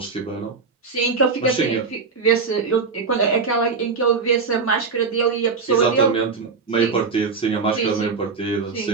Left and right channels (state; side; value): quieter; left; 4.9 dB